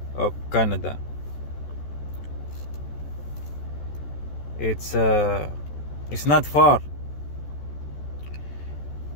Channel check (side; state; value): right; late; 14 ms